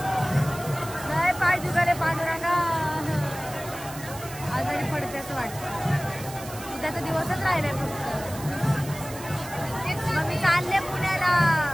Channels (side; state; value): right; noise; hiss, 14 dB below the sound